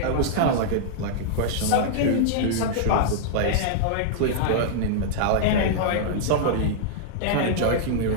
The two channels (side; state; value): both; different; correlation -0.01